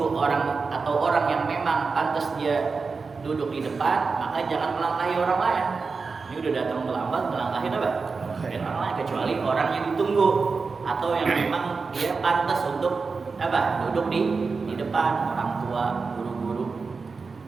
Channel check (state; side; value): quieter; left; 4.6 dB